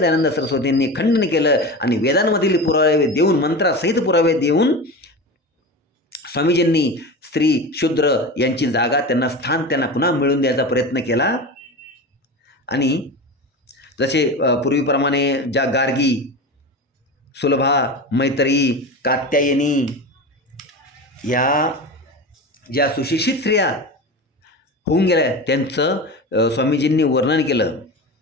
सरस्वतींनी खंडन केलं आणि वेदांमधील पुरावे देऊन, मंत्रासहित पुरावे देऊन स्वामीजींनी स्त्री शूद्र यांची जागा, त्यांना स्थान त्यांना पुन्हा मिळवून द्यायचा प्रयत्न केला. आणि जसे पूर्वीप्रमाणे ज्या गार्गी, सुलभा, मैत्री, कात्यायनी या ज्या सुशिक्षित स्त्रिया होऊन गेल्या त्यांचं स्वामीजींनी वर्णन केलं.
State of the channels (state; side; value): normal; both; correlation 0.27